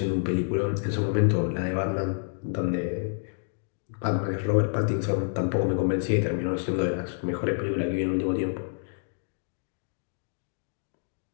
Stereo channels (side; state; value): right; silent; digital silence